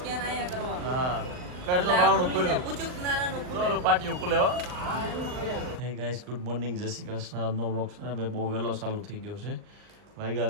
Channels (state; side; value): late; left; 39 ms